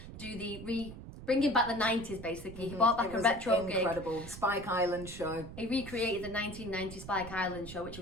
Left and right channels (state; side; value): noise; right; rumble, 12 dB below the sound